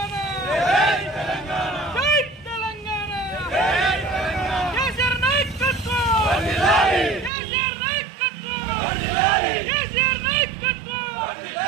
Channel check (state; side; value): drops out; left; at 7.3 s